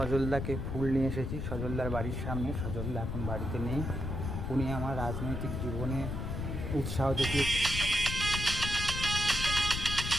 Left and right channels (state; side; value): noise; left; rumble, 3 dB below the sound